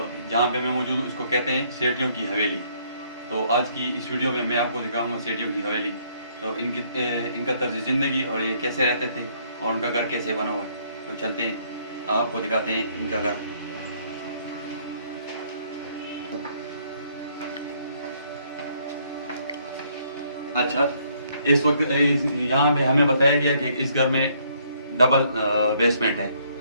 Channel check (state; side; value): inverted; both; correlation -0.67